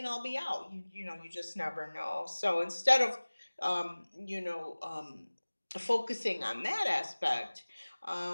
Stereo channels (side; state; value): both; inverted; correlation -1.00